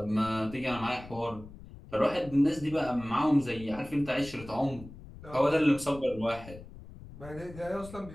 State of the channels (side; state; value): left; noise; rumble, 16 dB below the sound